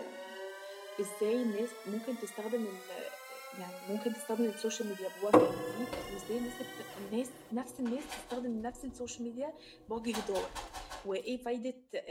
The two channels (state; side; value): identical; both; correlation 1.00